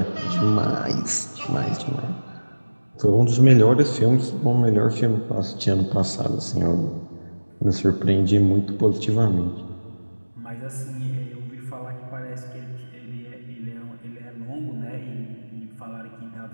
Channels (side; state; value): both; inverted; correlation -1.00